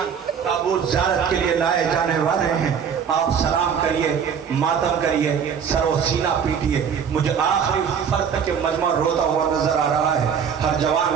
تابوت زیارت کے لیے لائے جانے والے ہیں. آپ سلام کریے, ماتم کریے, سر و سینہ پیٹیے. مجھے آخری فرد کے مجمع روتا ہوا نظر آ رہا ہے. ہر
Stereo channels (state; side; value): quieter; left; 7.3 dB